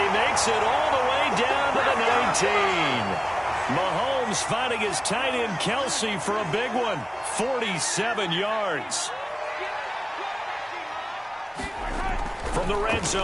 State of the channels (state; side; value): identical; both; correlation 1.00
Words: makes it all the way down to the 19. Mahomes finding his tight end Kelsey for a big one. 47 yards. From the red